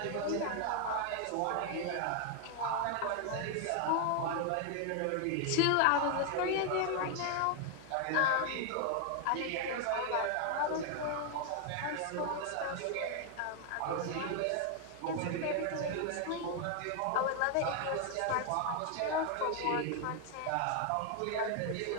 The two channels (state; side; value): different; both; correlation 0.00